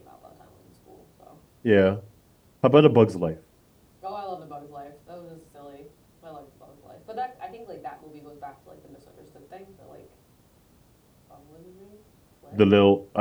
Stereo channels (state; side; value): identical; both; correlation 1.00